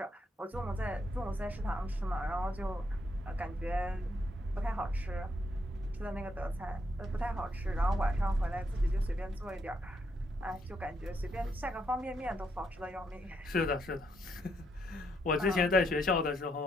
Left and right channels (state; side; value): normal; both; correlation 0.76